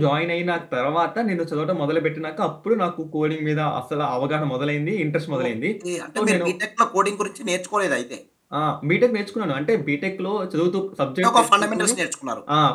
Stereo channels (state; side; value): identical; both; correlation 1.00